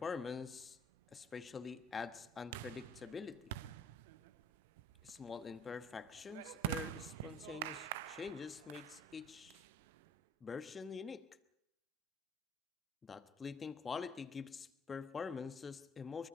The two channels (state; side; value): normal; both; correlation 0.52